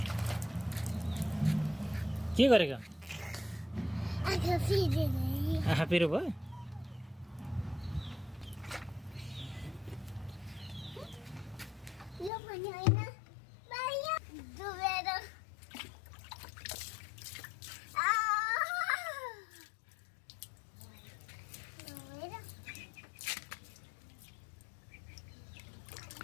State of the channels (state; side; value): drops out; right; at 12.3 s